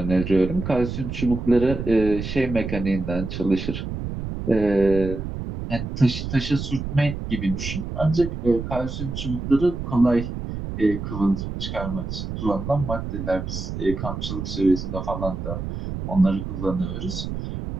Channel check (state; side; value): noise; right; rumble, 6 dB below the sound